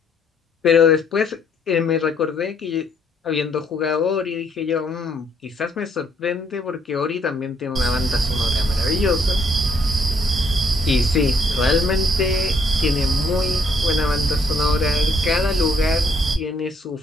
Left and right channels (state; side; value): normal; both; correlation 0.68